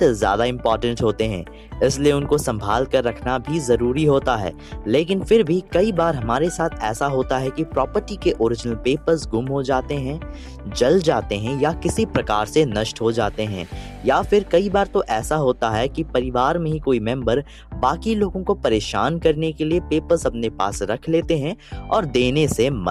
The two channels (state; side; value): identical; both; correlation 1.00